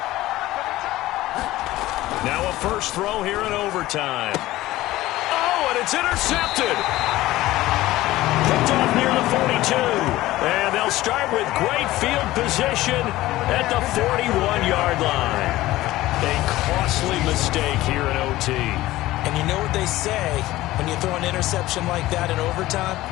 Now a first throw here in overtime. Oh, and it's intercepted. Picked off near the 42. And they'll start with great field position at the 41-yard line. A costly mistake here in OT. And you know what they say when you throw an interception like that in overtime?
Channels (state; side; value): quieter; right; 16.7 dB